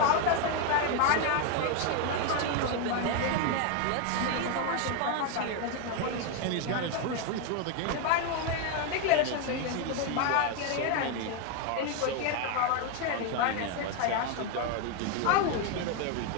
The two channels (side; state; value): both; different; correlation 0.01